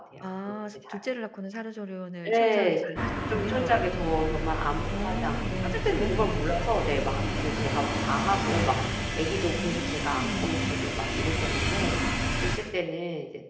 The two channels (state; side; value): identical; both; correlation 1.00